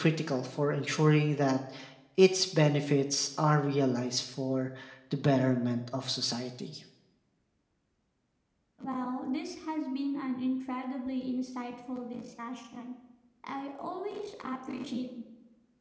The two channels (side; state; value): both; identical; correlation 1.00